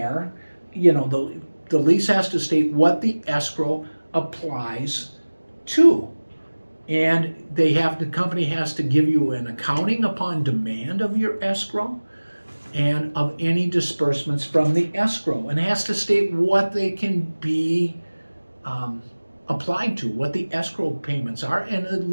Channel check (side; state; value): both; inverted; correlation -1.00